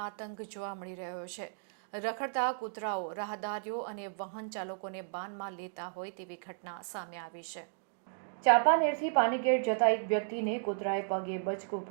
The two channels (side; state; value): left; silent; digital silence